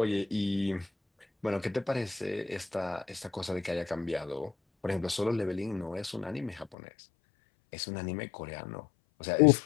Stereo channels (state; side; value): drops out; right; at 6.8 s